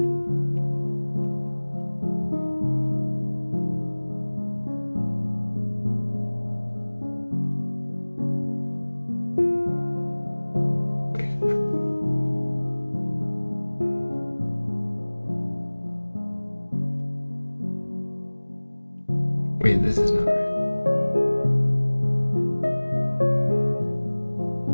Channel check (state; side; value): inverted; both; correlation -1.00